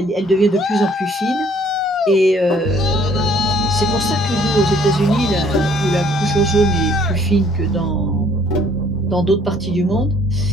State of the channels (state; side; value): normal; both; correlation 0.59